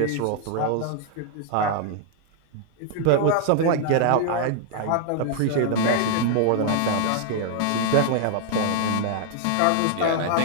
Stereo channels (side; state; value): both; different; correlation -0.01